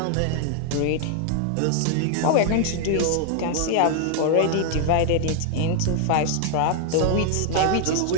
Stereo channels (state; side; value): different; both; correlation 0.00